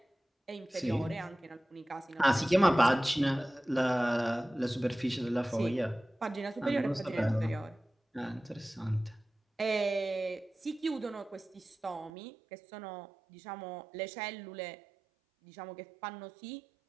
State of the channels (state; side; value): drops out; left; at 12.1 s